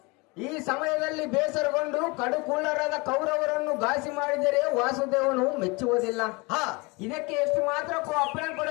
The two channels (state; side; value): quieter; right; 26.8 dB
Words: ಈ ಸಮಯದಲ್ಲಿ ಬೇಸರಗೊಂಡು ಕಡುಕುಳ್ಳರಾದ ಕೌರವರನ್ನು ಘಾಸಿ ಮಾಡಿದರೆ ವಾಸುದೇವನು ಮೆಚ್ಚುವುದಿಲ್ಲ. ಇದಕ್ಕೆ ಎಷ್ಟು ಮಾತ್ರಕ್ಕೂ ಅಪ್ಪಣೆ